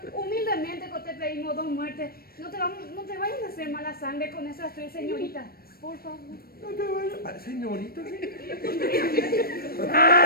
humildemente que te pedimos 2 muertes. No te vayas a hacer mala sangre con esas 3 señoritas. Por favor. No te vayas. Ay, señorita.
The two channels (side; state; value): right; late; 0.44 ms